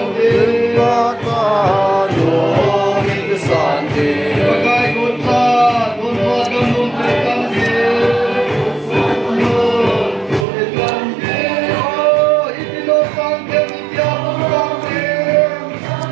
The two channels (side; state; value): left; drops out; at 10.5 s